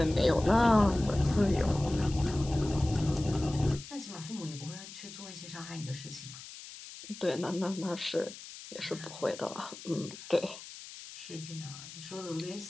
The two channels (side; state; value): left; noise; hiss, 14 dB below the sound